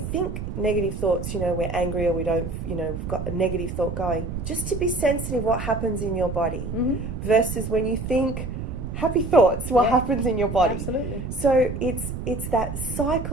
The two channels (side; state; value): right; noise; rumble, 6 dB below the sound